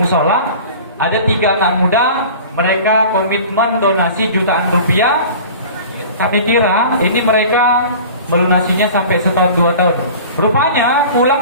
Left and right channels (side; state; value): both; inverted; correlation -0.40